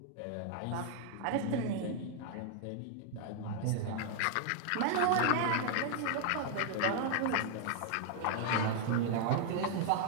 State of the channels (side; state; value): both; different; correlation 0.00